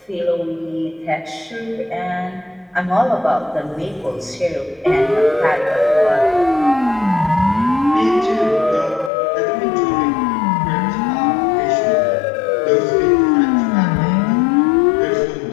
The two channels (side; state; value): right; drops out; at 9.1 s